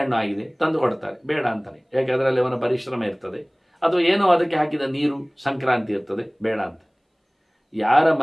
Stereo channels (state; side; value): identical; both; correlation 1.00